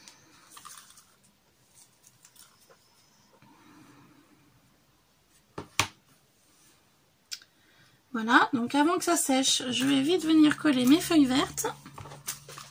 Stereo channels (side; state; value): both; identical; correlation 1.00